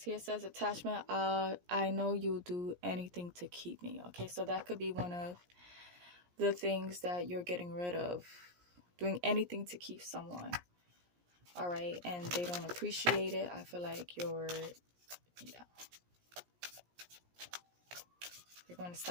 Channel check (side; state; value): left; late; 17 ms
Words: here it says attachment, I know you'll do anything to keep me, okay? So that could be one of the things that you're getting rid of, doing anything to keep someone. All right, and they don't appreciate it. I feel like you're going to